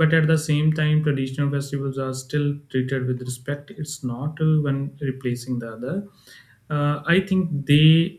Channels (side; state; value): both; identical; correlation 1.00